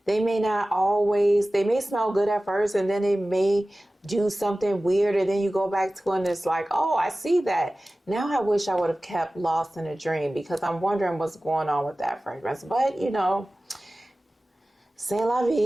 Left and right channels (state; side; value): normal; both; correlation 0.96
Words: they may smell good at first, and then they may do something weird, and then you go back to it and it's like, oh, I see that. Now I wish I would have kept Lost in a Dream, because I'm wondering what's going on with that fragrance. But you know, c'est la